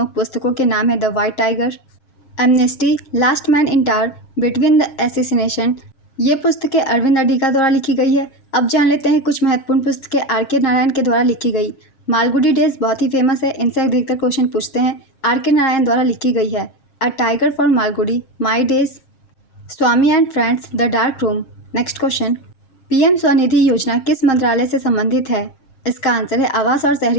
पुस्तकों के नाम है the white tiger, amnesty, last man in tower, between the assassination. ये पुस्तकें अरविंद अडिगा द्वारा लिखी गई है। अब जान लेते हैं कुछ महत्वपूर्ण पुस्तकें R.K. नारायण के द्वारा लिखी गई। मालगुडी डेज बहुत ही फेमस है, इनसे अधिकतर क्वेश्चन पूछते हैं। R.K. नारायण द्वारा लिखी गई है। A tiger for Malgudi, my days, Swami and friends, the dark room. Next question, PM Svanidhi योजना किस मंत्रालय से संबंधित है? इसका आंसर है आवास और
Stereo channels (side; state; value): right; late; 7.5 ms